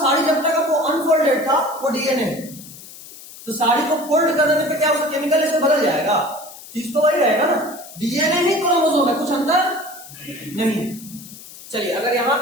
जब तक वो अनफोल्डेड था वो डीएनए है। तो साड़ी को फोल्ड कर देने पे क्या उसका केमिकल इससे बदल जाएगा? चीज तो वही रहेगा ना, डीएनए ही क्रोमोसोम है, कुछ अंतर नहीं। चलिए अगर यहां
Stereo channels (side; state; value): left; noise; hiss, 17 dB below the sound